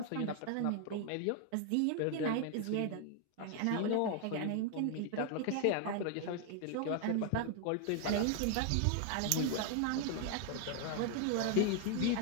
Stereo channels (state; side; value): different; both; correlation 0.01